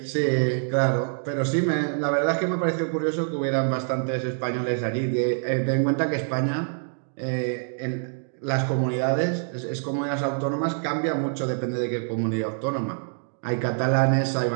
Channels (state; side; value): silent; left; digital silence